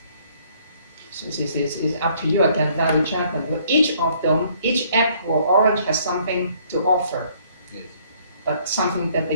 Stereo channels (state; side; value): inverted; both; correlation -0.63